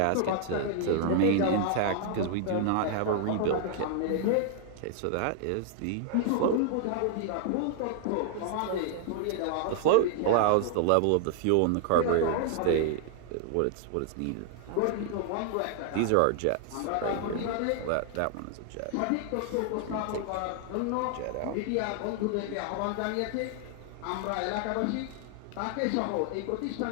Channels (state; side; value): different; both; correlation 0.00